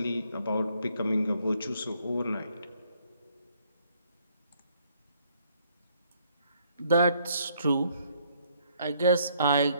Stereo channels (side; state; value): both; inverted; correlation -0.67